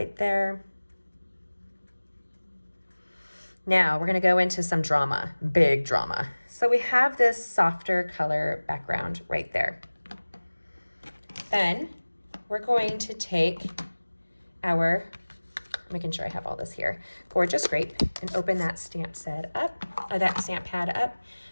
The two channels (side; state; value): both; inverted; correlation -1.00